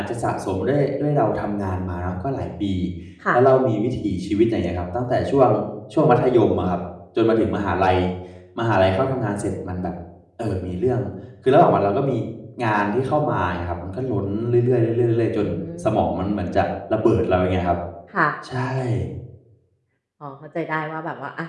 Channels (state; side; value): identical; both; correlation 1.00